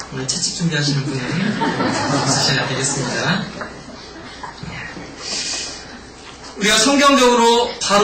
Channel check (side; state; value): both; identical; correlation 1.00